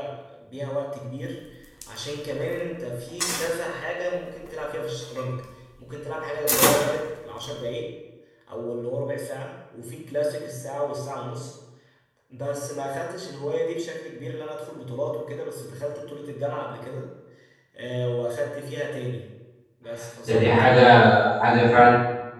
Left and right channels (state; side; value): identical; both; correlation 1.00